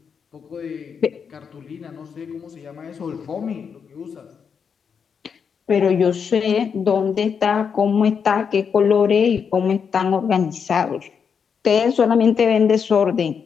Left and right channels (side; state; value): right; quieter; 6.6 dB